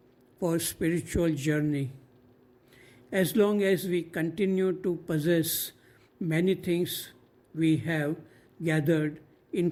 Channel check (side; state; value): both; identical; correlation 1.00